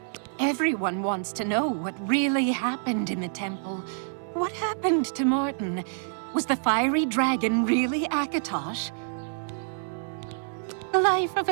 Everyone wants to know what really happened in the temple. What happened to Martin? Was the fiery dragon really Akatosh? The life of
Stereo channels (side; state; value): left; silent; digital silence